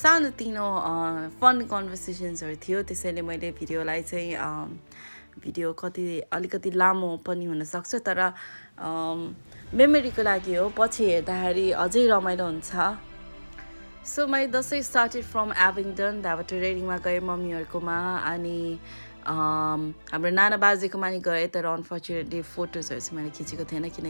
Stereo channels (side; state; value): both; inverted; correlation -1.00